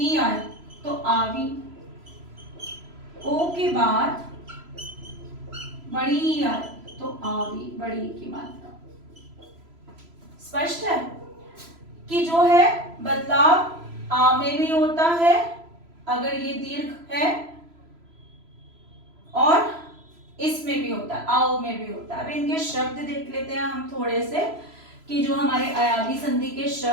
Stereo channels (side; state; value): left; late; 3.0 ms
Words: आए तो आवी, ओ के बाद बड़ी ई आए तो आवी, बड़ी की मात्रा। स्पष्ट है कि जो है बदलाव आ में भी होता है अगर ये दीर्घ है और इसमें भी होता है, आओ में भी होता है। अब इनके शब्द देख लेते हैं हम थोड़े से कि जो हमारे अयादी संधि के